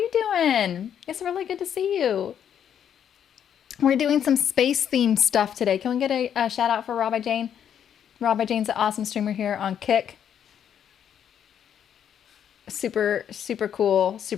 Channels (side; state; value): right; quieter; 9.0 dB